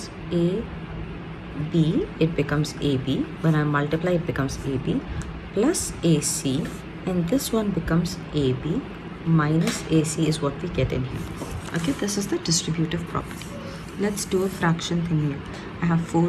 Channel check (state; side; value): identical; both; correlation 1.00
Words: A B, it becomes AB. When I multiply, it becomes AB plus AC, and this one becomes AB minus AC is what we get in here. Okay, this is the distributive property. Let's do a fraction thing here. I have 4